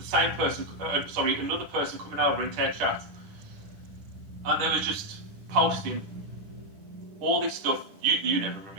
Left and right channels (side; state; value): left; late; 10 ms